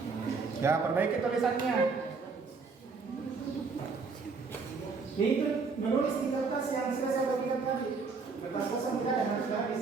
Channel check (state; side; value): quieter; left; 4.7 dB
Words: Ya, perbaiki tulisannya. Itu menulis di kertas yang sudah saya bagikan tadi. Kertas kosong tidak ada, harus